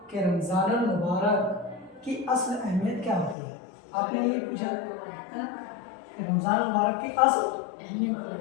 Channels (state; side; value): drops out; right; at 3.4 s